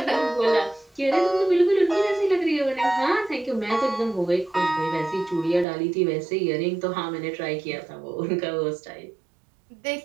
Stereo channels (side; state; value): left; drops out; at 5.7 s